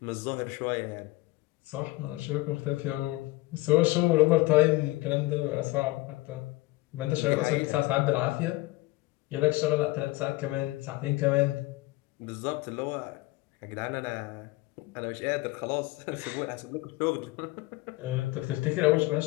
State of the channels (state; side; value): quieter; right; 20.4 dB